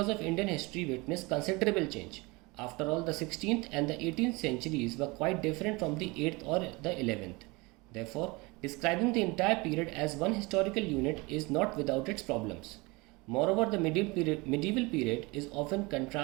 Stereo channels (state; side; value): quieter; left; 25.0 dB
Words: of Indian history witnessed considerable change. After all, the 16th and the 18th centuries were quite different from the 8th or the 11th. Therefore, describing the entire period as one historical unit is not without its problems. Moreover, the medieval period is often